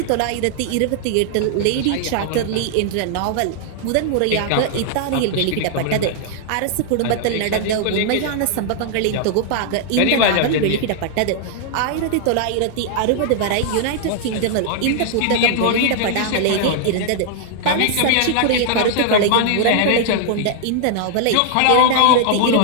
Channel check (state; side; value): different; both; correlation -0.01